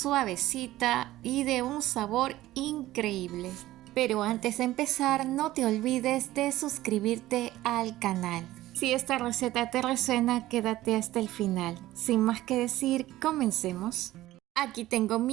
y de un sabor increíble. Pero antes de empezar, no te olvides de suscribirte al canal. Si esta receta te resuena, quédate hasta el final. Sin más que decir, comencemos. Aquí tengo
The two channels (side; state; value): left; quieter; 15.8 dB